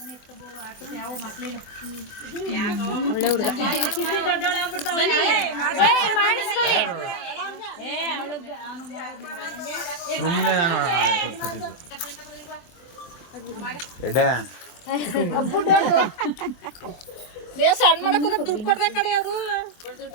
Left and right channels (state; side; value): late; right; 24 ms